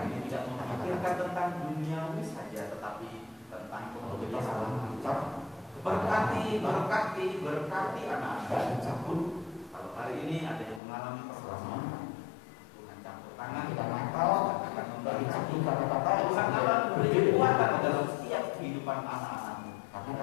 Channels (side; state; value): right; drops out; at 10.8 s